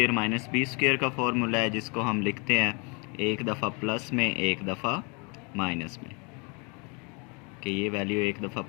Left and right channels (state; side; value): quieter; right; 32.2 dB